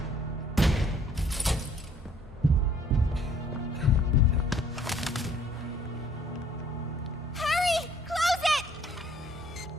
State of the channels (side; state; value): both; normal; correlation 0.60